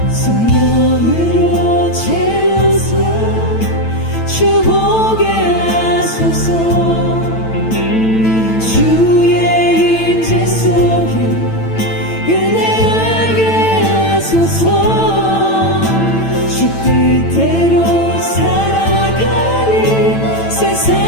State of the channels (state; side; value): late; right; 9.0 ms